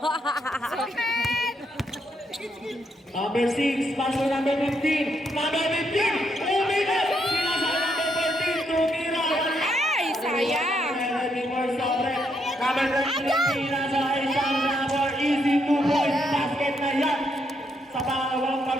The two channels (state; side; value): normal; both; correlation 0.77